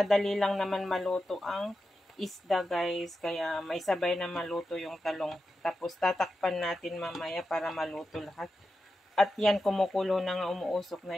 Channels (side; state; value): both; normal; correlation 0.90